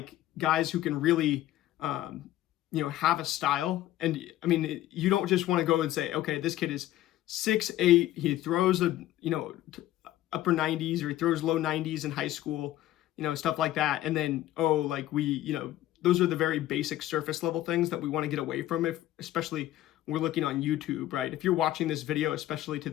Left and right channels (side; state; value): right; quieter; 14.3 dB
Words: guys who can really, have a style. And you don't just want to go and say, okay, this kid is 6'8", he throws upper 90s, or he throws low 90s in high school, stuff like that. And then, those are the very basic surface level things that we want to get away from, especially we're looking on YouTube, right? If you're watching this video, especially to